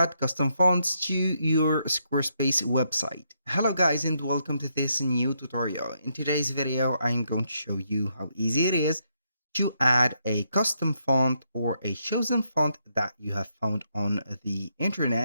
custom fonts to your Squarespace website. Hello guys and welcome to this new tutorial. In today's video, I'm going to show you how easy it is to add a custom font or a chosen font that you have found on the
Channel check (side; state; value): both; inverted; correlation -0.77